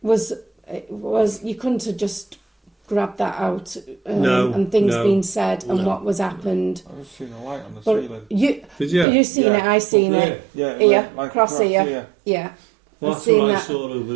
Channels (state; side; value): drops out; left; at 9.1 s